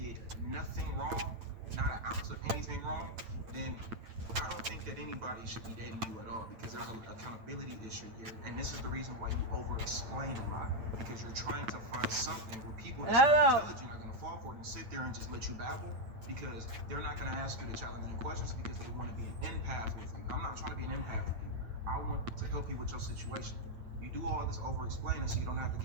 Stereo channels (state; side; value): late; left; 8.9 ms